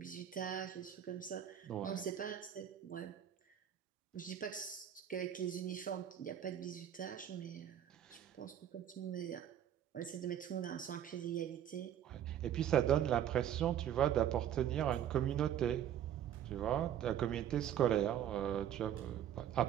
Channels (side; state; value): left; quieter; 10.2 dB